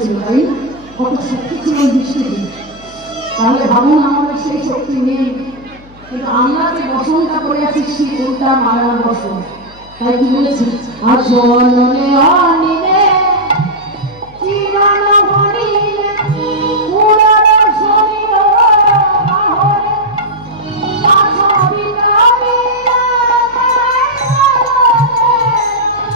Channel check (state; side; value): noise; left; hum, 24 dB below the sound